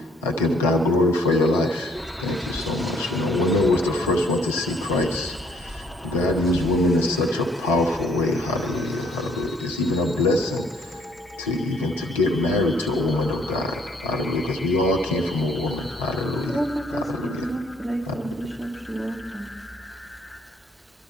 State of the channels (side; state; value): both; normal; correlation 0.63